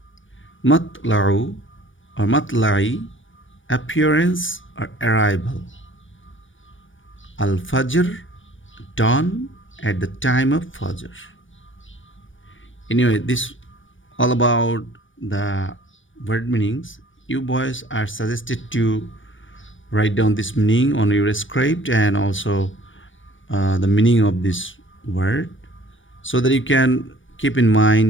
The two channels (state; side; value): late; right; 0.56 ms